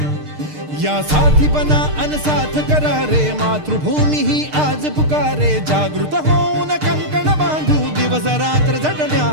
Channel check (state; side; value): late; left; 6.6 ms